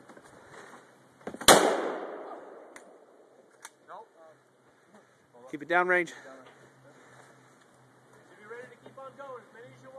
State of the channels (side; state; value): both; identical; correlation 1.00